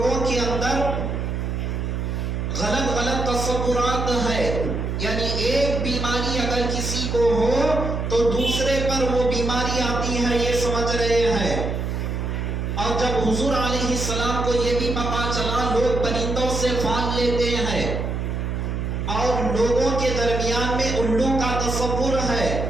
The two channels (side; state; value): right; noise; hum, 2 dB below the sound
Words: کے اندر غلط غلط تصورات ہے، یعنی ایک بیماری اگر کسی کو ہو تو دوسرے پر وہ بیماری آتی ہے، یہ سمجھ رہے ہیں۔ اور جب حضور علیہ السلام کو یہ بھی پتا چلا، لوگ پرندوں سے پھال لیتے ہیں اور لوگوں کے درمیان میں الو کا تصور ہے،